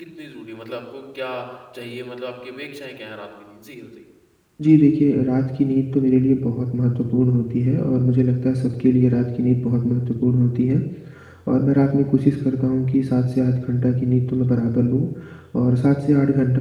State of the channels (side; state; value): both; identical; correlation 1.00